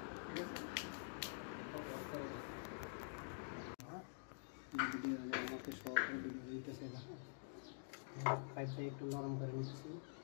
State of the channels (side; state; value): right; silent; digital silence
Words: ঠিক আছে। আমাকে শর্ট ভিডিও দিতেছে না, পাইপটা একটু নরম করে নিচ্ছি।